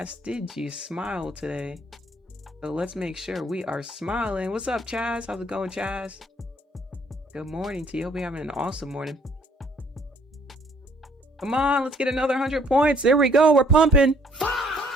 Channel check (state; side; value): normal; both; correlation 0.61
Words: did you smile today? So let's make sure we are smiling. What's up, Chaz? How's it going, Chaz? Good morning to you. Hope you're having an awesome morning. Come on, let's get another 100 points. There we go. We're pumping.